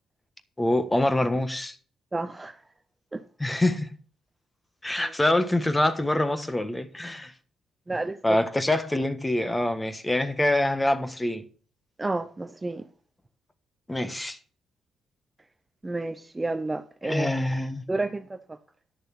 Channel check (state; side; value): normal; both; correlation 0.95